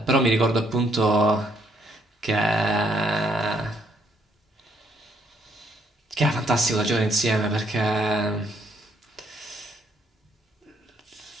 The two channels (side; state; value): both; normal; correlation 0.70